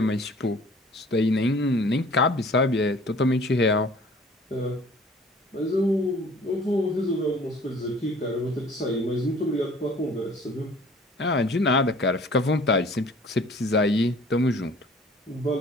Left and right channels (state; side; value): normal; both; correlation 0.50